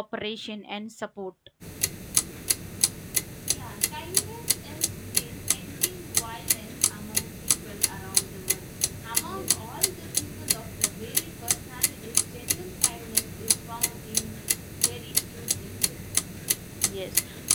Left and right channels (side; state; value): both; identical; correlation 1.00